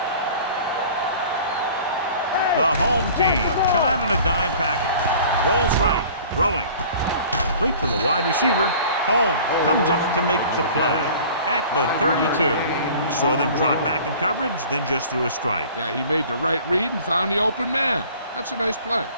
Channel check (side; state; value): both; inverted; correlation -0.46